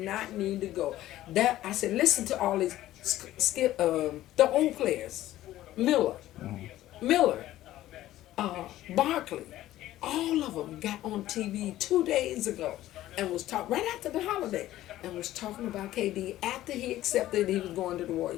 need to go. I said, listen to all these the old players. Miller, Barkley. All of them got on TV 2 days ago and was talking right after the holiday and was talking about KD after he accepted he was going to the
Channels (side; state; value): right; quieter; 14.5 dB